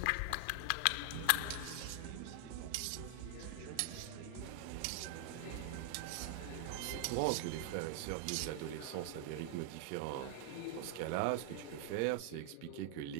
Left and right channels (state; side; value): different; both; correlation 0.00